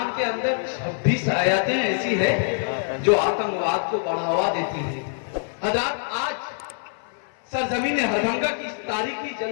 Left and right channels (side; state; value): right; silent; 57 dB below the other